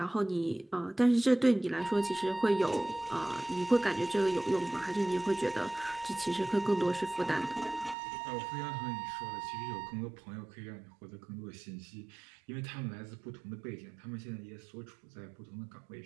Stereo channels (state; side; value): drops out; left; at 8.0 s